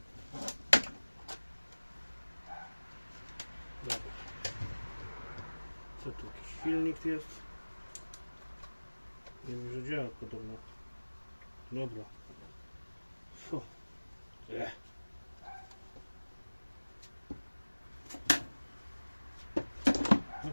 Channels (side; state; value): both; inverted; correlation -1.00